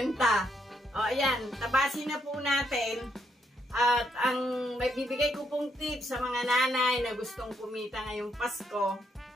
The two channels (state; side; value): normal; both; correlation 0.75